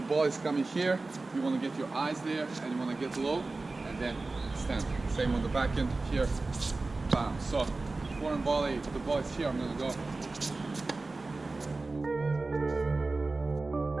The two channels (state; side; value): quieter; left; 3.4 dB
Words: ball is coming here. You wanna get your eyes there, and you wanna get low, and then stand. Same on the back end here. Bam. So, forehand volley, the ball is here, I'm gonna go.